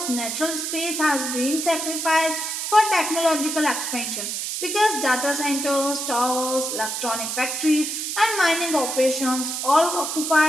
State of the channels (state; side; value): noise; right; hiss, 3 dB below the sound